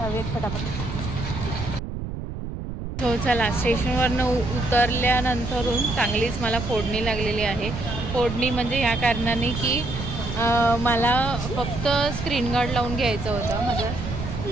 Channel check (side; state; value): right; noise; rumble, 6 dB below the sound